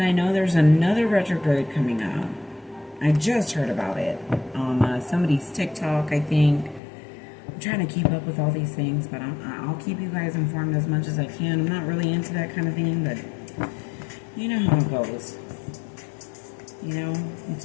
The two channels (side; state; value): right; drops out; at 6.8 s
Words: I know there's another retrograde coming up. I just heard about it on somebody's TikTok, I think. I'm trying to keep up with all these things, but I'll keep you guys informed as much as I can. I'm not really into that kind of thing, but you know how it goes. You know, you